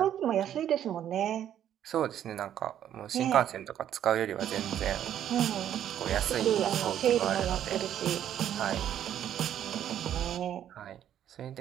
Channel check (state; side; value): quieter; left; 10.5 dB